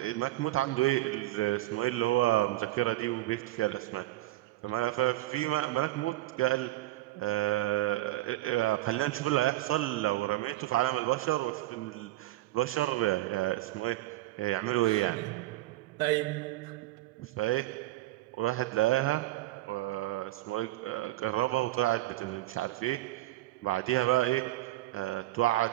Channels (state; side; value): quieter; left; 16.5 dB